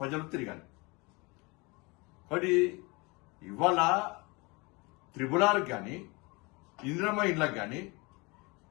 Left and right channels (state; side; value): quieter; right; 26.7 dB